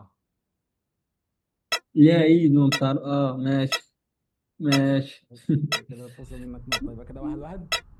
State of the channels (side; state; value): both; identical; correlation 1.00